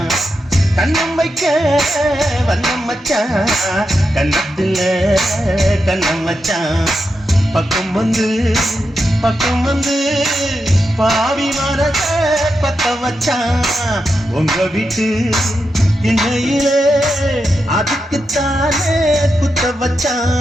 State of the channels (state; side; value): normal; both; correlation 0.87